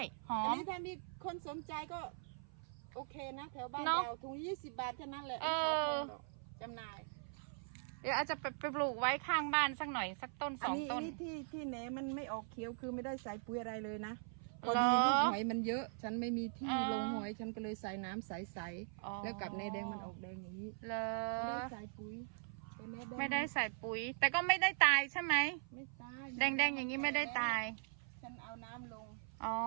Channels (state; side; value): silent; left; 51 dB below the other